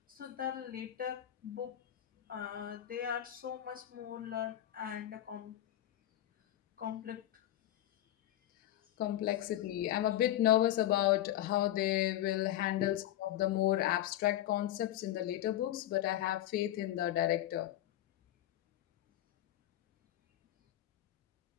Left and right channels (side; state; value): right; quieter; 13.1 dB